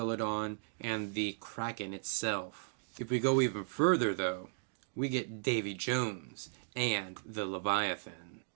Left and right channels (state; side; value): silent; left; digital silence